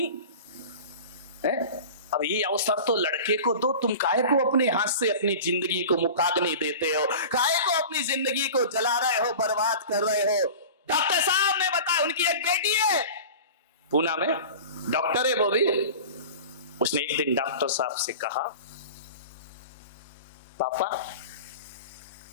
है। अब ये अवसर तो लड़के को दो, तुम काहे को अपने हाथ से अपनी जिंदगी को मुखाग्नि देते हो? काहे को अपनी जिंदगी को जला रहे हो, बर्बाद कर रहे हो? डॉक्टर साहब ने बताया, उनकी एक बेटी है पूना में, डॉक्टर है वो भी। उसने एक दिन डॉक्टर साहब से कहा, पापा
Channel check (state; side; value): inverted; both; correlation -0.36